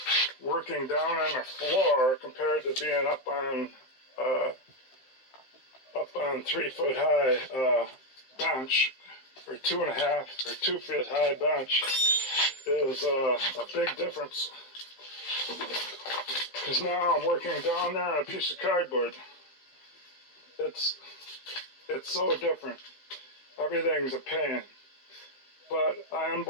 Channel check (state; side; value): late; right; 15 ms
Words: working down on the floor compared to being up on 3 foot high bench, or 2.5 or 2 feet high bench, is a big difference. Because now I'm working down there on a piece of cardboard. It's so different. Everything's a pain. But I